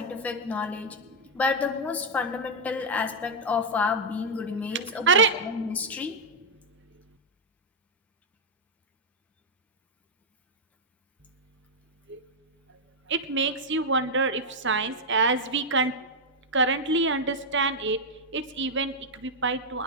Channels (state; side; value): normal; both; correlation -0.03